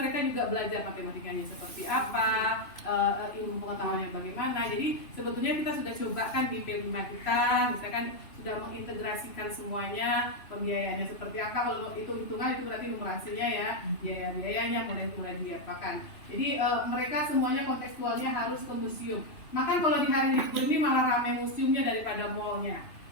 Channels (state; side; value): late; right; 2.9 ms